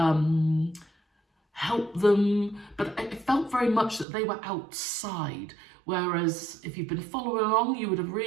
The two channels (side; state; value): left; drops out; at 4.0 s